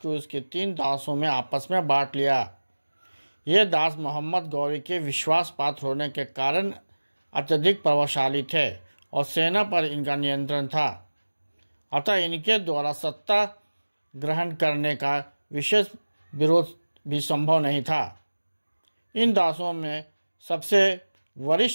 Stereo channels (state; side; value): inverted; both; correlation -1.00